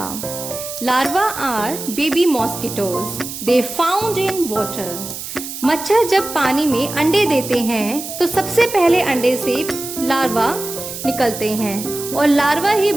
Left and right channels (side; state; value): right; noise; hiss, 9 dB below the sound